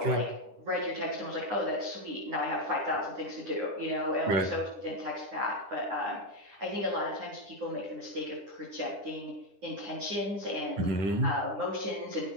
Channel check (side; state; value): left; late; 10 ms